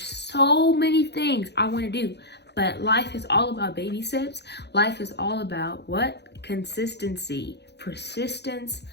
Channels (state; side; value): late; right; 0.49 ms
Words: so many things I want to do, but life is all about baby steps. Life is all about what? Consistency, persistence,